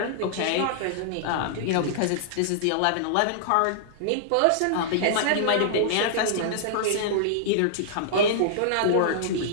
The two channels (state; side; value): different; both; correlation -0.02